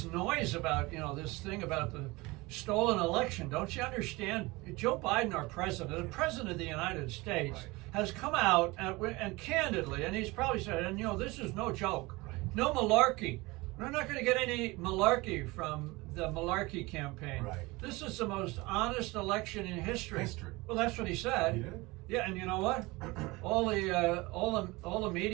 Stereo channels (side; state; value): left; quieter; 22.7 dB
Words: noise about, this thing about the stolen election? Don't you understand? Joe Biden, our president, the president of the United States, Right. has come out and candidly, and he's probably said, and this is no joke, Right. no malarkey. We're not going to get any malarkey from the malarkey campaign. Right. This is the most honest election in history. History. Well, that's what he said. He did? Yeah, and you know what? all the